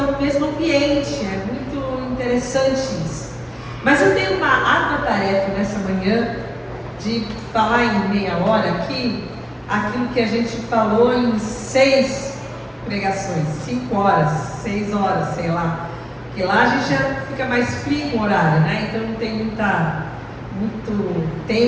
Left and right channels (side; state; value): both; identical; correlation 1.00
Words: no mesmo ambiente. É muito interessante isso. Mas eu tenho uma árdua tarefa nessa manhã de falar em meia hora aqui aquilo que a gente falou em 6 pregações, 5 horas, 6 horas, sei lá. Porque lá a gente já fica mais frio com o horário, né? Então não tem muito